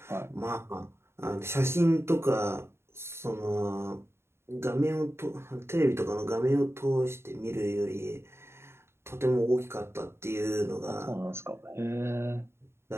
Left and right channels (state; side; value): late; left; 0.12 ms